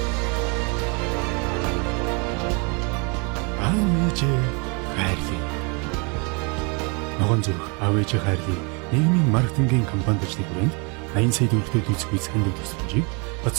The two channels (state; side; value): quieter; left; 32.6 dB